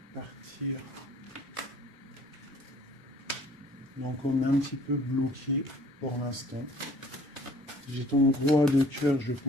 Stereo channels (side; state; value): both; normal; correlation 0.54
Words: Partir. Donc, on est un petit peu bloqué pour l'instant. J'ai ton roi de cœur, je